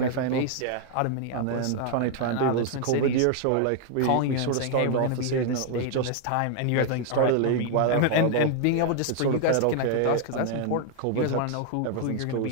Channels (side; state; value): both; different; correlation 0.00